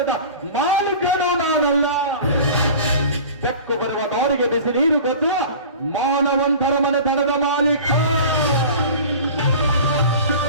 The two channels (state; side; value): inverted; both; correlation -0.39